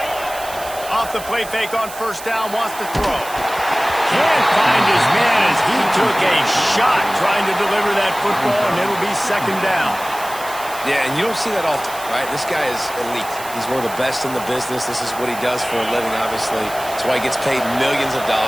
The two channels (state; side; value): noise; right; hiss, 14 dB below the sound